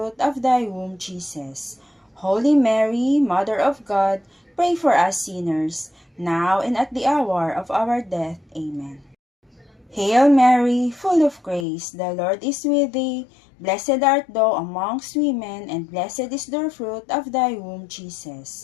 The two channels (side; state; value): right; drops out; at 11.7 s